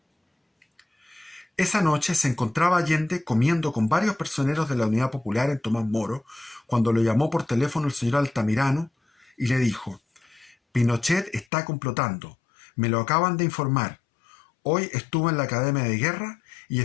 esa noche se encontraba Allende comiendo con varios personeros de la Unidad Popular en Tomás Moro, cuando lo llamó por teléfono el señor Altamirano y le dijo: Pinochet está complotando, me lo acaban de informar. Hoy estuvo en la Academia de Guerra y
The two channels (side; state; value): right; drops out; at 11.5 s